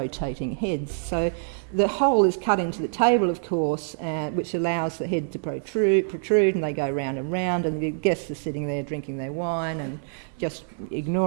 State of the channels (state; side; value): silent; left; digital silence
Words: heads. So the hole is cut into the table, of course, which allows the head to protrude, and they go round and round, and the guests are sitting there drinking their wine and just